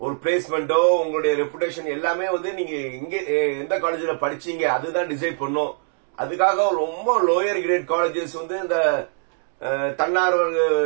பிளேஸ்மெண்டோ உங்களுடைய ரெப்புடேஷன் எல்லாமே வந்து நீங்க எங்க எந்த காலேஜ்ல படிச்சீங்க அதுதான் டிசைட் பண்ணும். அதுக்காக ரொம்ப லோயர் கிரேட் காலேஜஸ் வந்து இந்த தன்னார்வ,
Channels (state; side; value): silent; left; 64 dB below the other